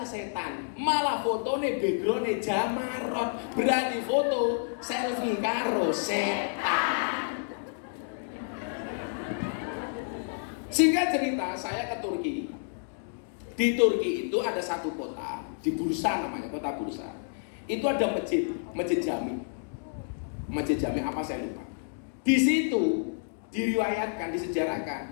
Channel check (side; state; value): right; silent; digital silence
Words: setan. Malah fotonya backgroundnya Jamarot. Berani foto selfie karo setan. Singkat cerita, saya ke Turki. Di Turki itu ada satu kota, di Bursa namanya, kota Bursa. Itu ada masjid Jami. Masjid Jami apa saya lupa. Di situ diriwayatkan,